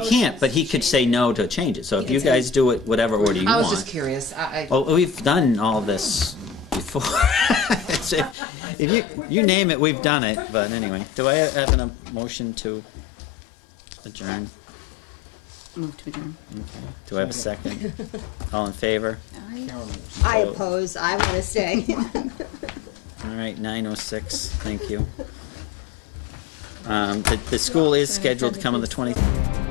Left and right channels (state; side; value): drops out; right; at 8.3 s